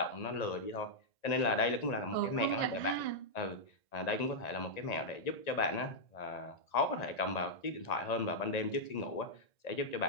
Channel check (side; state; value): right; late; 1.9 ms